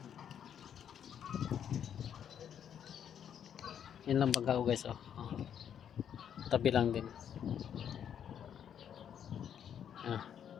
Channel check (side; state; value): right; quieter; 8.9 dB